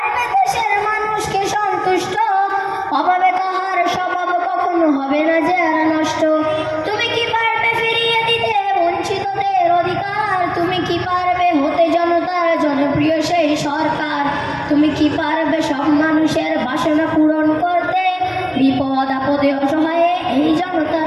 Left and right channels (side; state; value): both; identical; correlation 1.00